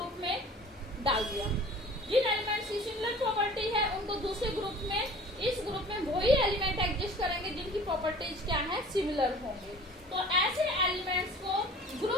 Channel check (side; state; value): both; normal; correlation 0.45